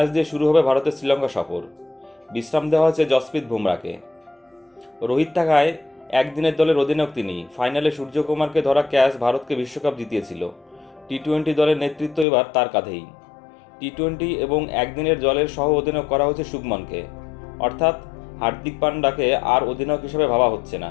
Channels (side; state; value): right; drops out; at 12.2 s